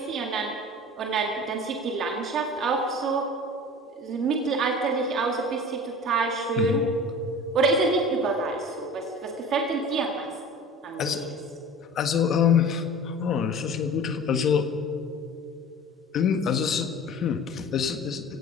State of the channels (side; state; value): both; normal; correlation 0.39